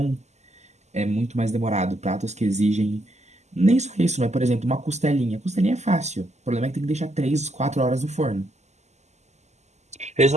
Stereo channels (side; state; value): left; late; 0.33 ms